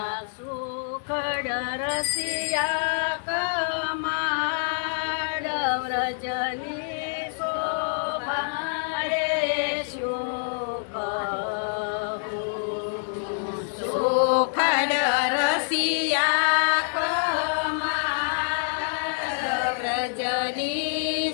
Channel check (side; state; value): right; silent; digital silence